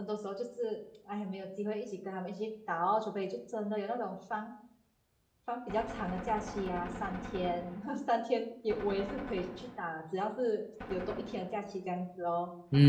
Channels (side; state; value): both; identical; correlation 1.00